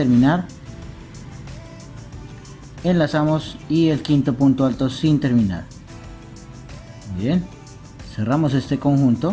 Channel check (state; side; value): identical; both; correlation 1.00